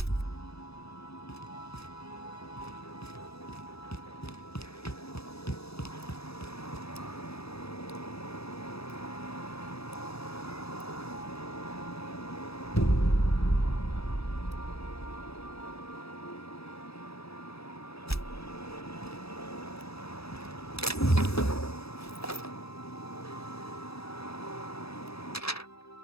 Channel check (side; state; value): right; late; 0.78 ms